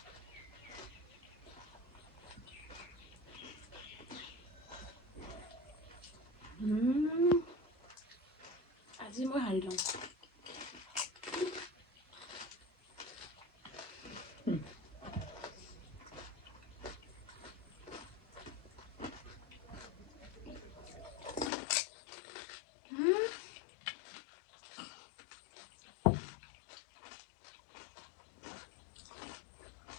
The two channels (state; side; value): drops out; right; at 21.5 s